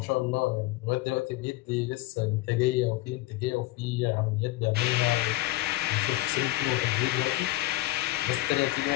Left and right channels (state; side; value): quieter; right; 17.7 dB